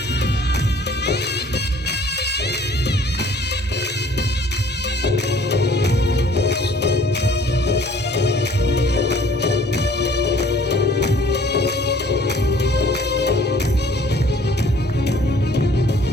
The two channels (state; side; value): normal; both; correlation 0.55